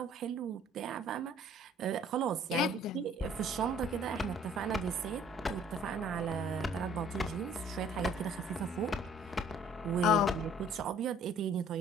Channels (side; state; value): both; normal; correlation 0.56